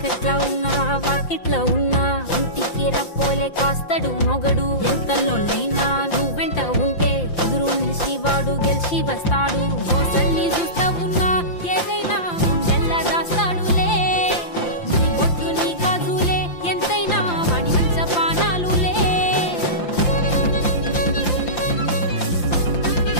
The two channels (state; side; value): late; right; 5.8 ms